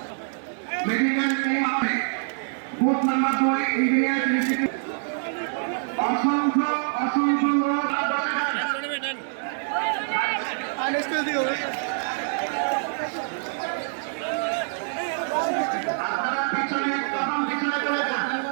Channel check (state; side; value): silent; left; digital silence